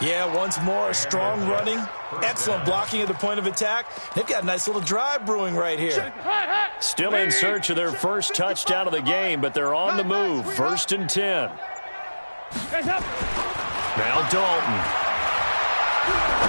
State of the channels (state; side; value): inverted; both; correlation -1.00